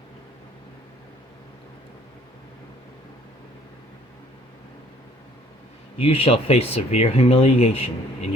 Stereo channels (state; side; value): normal; both; correlation 0.58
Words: You shall face severe humiliation in